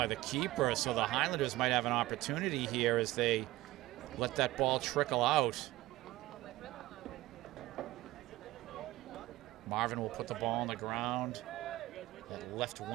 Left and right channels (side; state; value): left; quieter; 17.8 dB